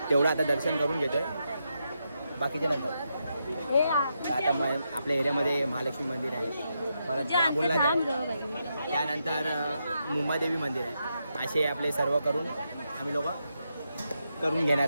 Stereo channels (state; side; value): inverted; both; correlation -0.83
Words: तेवढं आता दर्शन करून घेतो आहे, बाकीचे नंतर. आता आपल्या एरियामध्ये महालक्ष्मी मंदिर आहे, परत बाबुलनाथ आहे, त्यानंतर मुंबादेवी मंदिर आहे. असे आपले सर्व करून आम्ही लोक करून घेणार